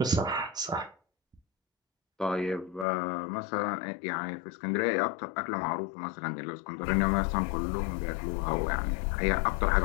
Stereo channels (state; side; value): drops out; right; at 2.9 s